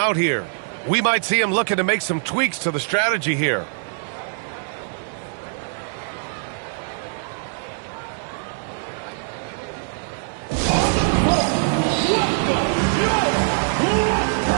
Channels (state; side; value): silent; left; digital silence